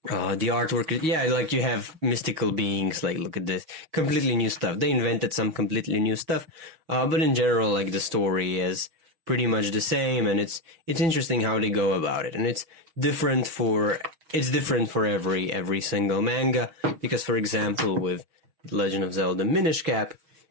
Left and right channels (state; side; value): late; left; 6.3 ms